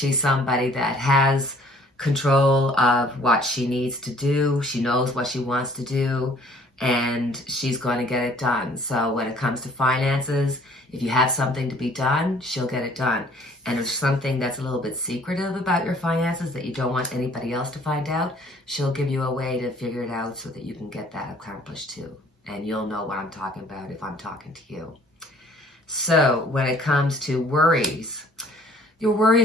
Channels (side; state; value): both; normal; correlation 0.56